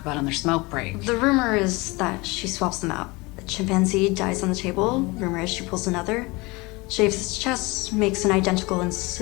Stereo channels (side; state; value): right; quieter; 24.3 dB